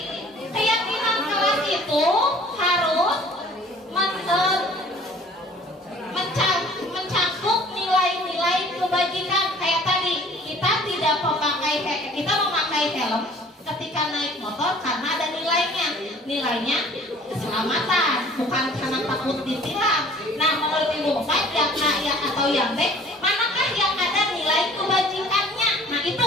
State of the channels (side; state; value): both; normal; correlation 0.51